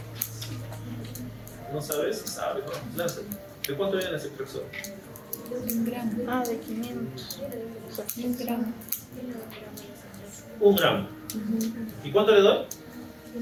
¿No sabes? Sabes, ¿no? Lánzate. ¿De cuánto viene ese Ceftrexol? 1 gramo. De 500. 1 gramo. 1 gramo. ¿Y cuánto le doy?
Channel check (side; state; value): both; identical; correlation 1.00